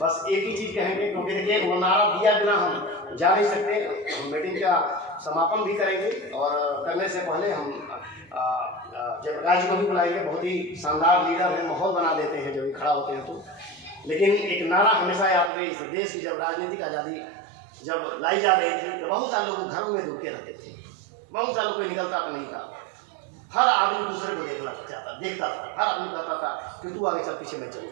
एक ही चीज कहेंगे, क्योंकि देखिए वो नारा दिया बिना हम जा नहीं सकते। हम मीटिंग का समापन भी करेंगे और करने से पहले हम जयप्रकाश जी को भी बुलाएंगे। बहुत ही शानदार लीडर हैं, माहौल बना देते हैं जब भी खड़ा होते हैं तो। लेकिन एक नारा हमेशा याद रहे, इस देश की जब राजनीतिक आज़ादी जब लाई जा रही थी तो बहुत सारे लोग घरों में रुके रहते थे, बहुत सारे कोई निकलता तो नहीं था। हर आदमी दूसरे को देखता था। हर आदमी कहता था कि तू आगे चल, पीछे मैं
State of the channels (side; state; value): left; drops out; at 15.5 s